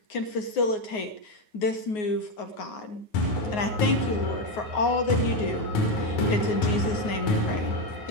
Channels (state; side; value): late; right; 9.5 ms